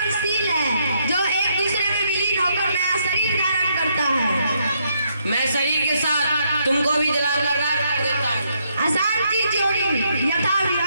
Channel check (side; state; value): both; inverted; correlation -0.75